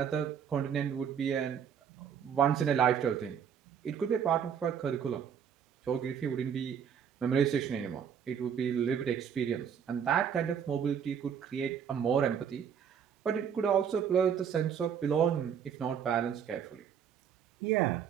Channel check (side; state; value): left; quieter; 7.9 dB